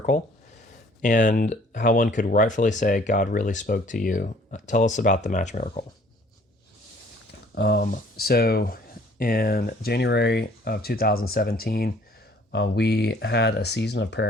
and how one could rightfully say God really spoke to you. Tell us about the match miracle. So in January of 2017, we had a season of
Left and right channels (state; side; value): normal; both; correlation 0.57